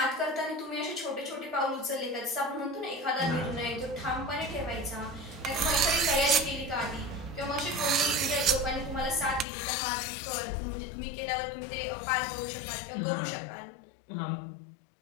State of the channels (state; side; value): drops out; right; at 9.5 s